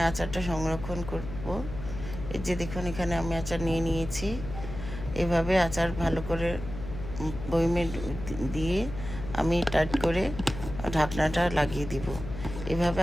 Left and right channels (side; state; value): left; noise; hum, 9 dB below the sound